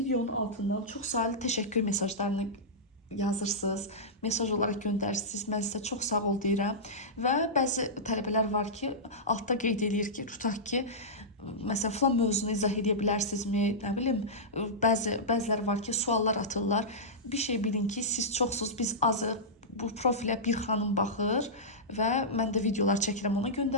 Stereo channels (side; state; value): both; normal; correlation -0.13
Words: altından çox sayılı təşəkkür mesajlarını yazırsınız, mesaj olaraq göndərirsiniz. Mən sizə çox sağ ol deyirəm. Və bəzi tələbələr var ki, altda qeyd edir ki, tutaq ki, məsələn, falan mövzunu izah edə bilərsinizmi? Nə bilim, bəziləri var ki, suallar atırlar. Bir şey bilin ki, siz çoxsuz, biz azıq. Bu profilə bir xanım baxır və mən də videolar çəkirəm, ona